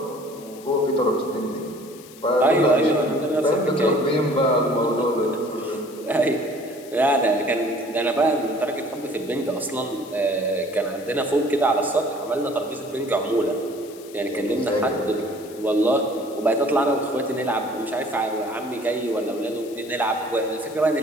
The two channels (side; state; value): left; noise; hiss, 20 dB below the sound